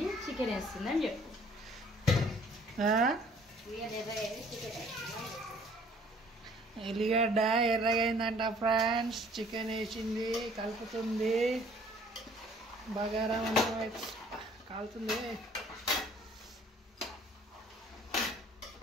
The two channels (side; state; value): both; normal; correlation 0.57